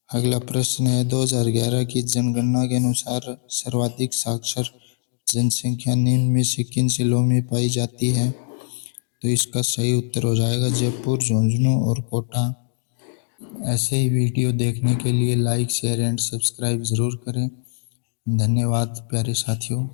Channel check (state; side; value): silent; right; digital silence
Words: अगला प्रश्न है, 2011 की जनगणना के अनुसार सर्वाधिक साक्षर जनसंख्या निम्न में से किन जिलों में पाई जाती है? तो इसका सही उत्तर हो जाएगा जयपुर, झुंझुनू और कोटा। ऐसे ही वीडियो देखने के लिए लाइक शेयर एंड सब्सक्राइब ज़रूर करें। धन्यवाद प्यारे साथियों।